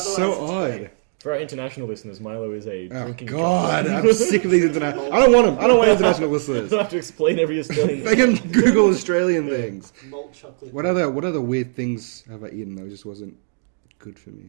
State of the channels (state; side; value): silent; left; digital silence